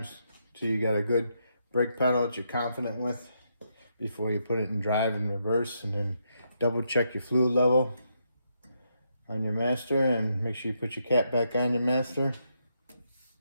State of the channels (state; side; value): inverted; both; correlation -0.79